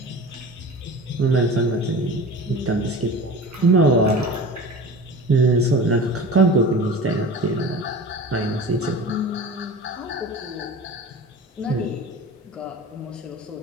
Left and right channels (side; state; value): both; normal; correlation 0.35